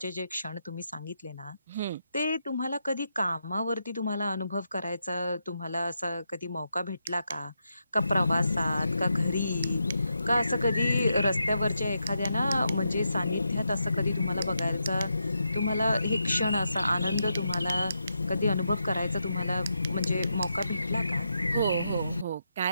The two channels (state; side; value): inverted; both; correlation -0.84